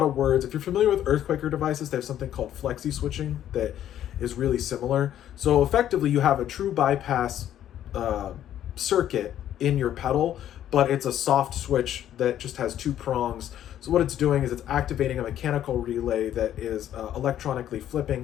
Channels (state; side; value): quieter; right; 11.2 dB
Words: of words. If you're familiar with Earthquaker devices, they have something called flexi switching that is really similar. So effectively, you have a true bypass circuit in your pedal, but it's a soft switch that just has 2 prongs. So what it's doing is it's activating a mechanical relay that is electronically